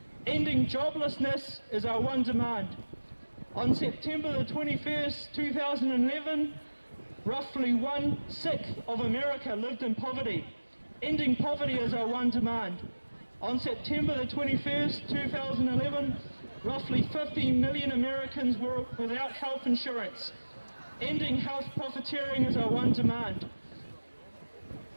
Ending joblessness is our one demand. On September the 21st, 2011, roughly 1/6 of America lived in poverty. Ending poverty is our one demand. On September the 21st, 2011, roughly 50 million Americans were without health insurance. Ending health profiteering is our one demand.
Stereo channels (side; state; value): both; inverted; correlation -1.00